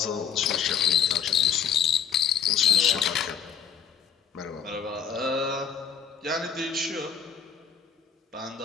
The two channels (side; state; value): right; quieter; 7.5 dB